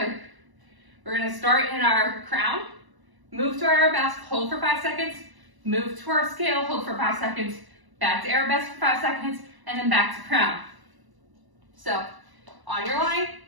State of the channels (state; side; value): late; left; 1.0 ms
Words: We're going to start in our crown, move to our arabesque, hold for 5 seconds, move to our scale, hold for 5 seconds, back to arabesque for 5 seconds, and then back to crown. So, on your line,